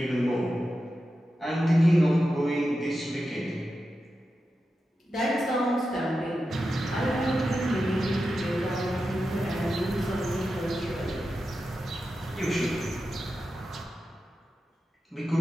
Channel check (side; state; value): both; normal; correlation 0.91